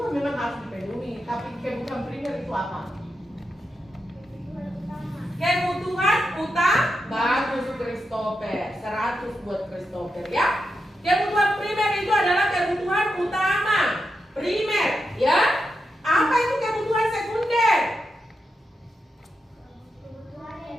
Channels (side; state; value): both; normal; correlation 0.86